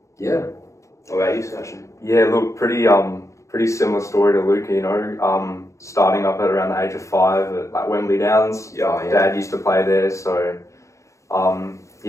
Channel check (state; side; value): late; right; 0.15 ms